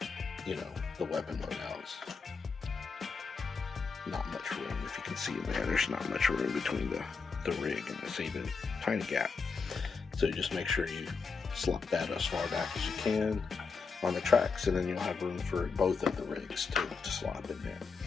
the weapon loadouts. Not much room. If you can see in there's not much room between the rig and the saving tiny gap. So you just make sure you slot that as far back as you can on the tracks, and then you'll have room for both of the rigs to slot in there.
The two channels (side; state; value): right; quieter; 5.0 dB